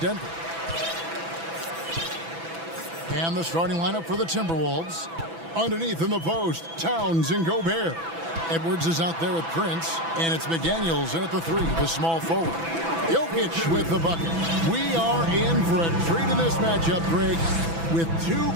And the starting lineup for the Timberwolves. Underneath in the post, Towns and Gobert. Edwards is out there with Prince, and it's McDaniels in at the 3, the small forward. Jokic with the bucket. We are in for a treat in this matchup, Greg, with two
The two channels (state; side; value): late; left; 6.0 ms